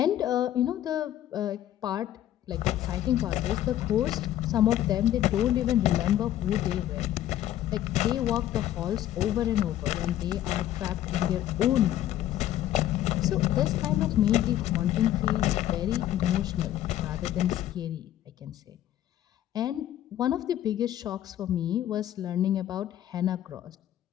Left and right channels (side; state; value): right; quieter; 12.5 dB